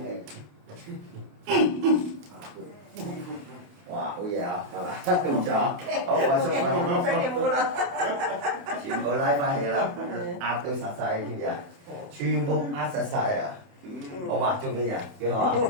氣。哇，好嘢啊，係嘛？唔錯，好放鬆翻。真嘅冇啦。全部拉翻起啦，壓到實晒，知唔知啊？全部壓實晒啊！好嘛，做咩嘢？幾好啊？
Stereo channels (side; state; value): left; late; 28 ms